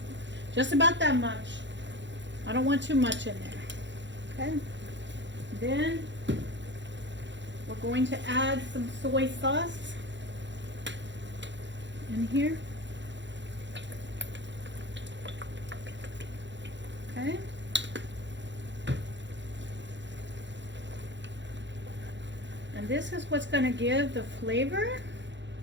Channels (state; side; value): late; left; 0.53 ms